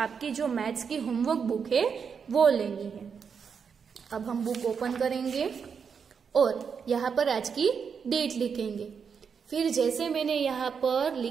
जो मैथ्स की होमवर्क बुक है वो लेनी है। अब हम बुक ओपन करेंगे और यहाँ पर आज की डेट लिखेंगे। फिर जैसे मैंने यहाँ पर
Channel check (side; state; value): left; quieter; 6.4 dB